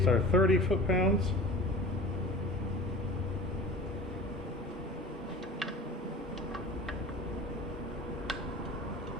are 30 foot-pounds.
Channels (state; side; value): normal; both; correlation 0.39